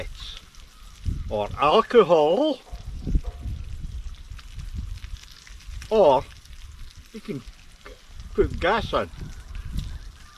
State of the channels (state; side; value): identical; both; correlation 1.00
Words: or alcohol, or you can put gas in.